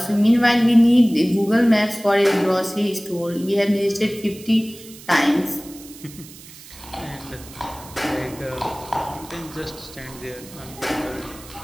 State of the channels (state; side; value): noise; right; hiss, 18 dB below the sound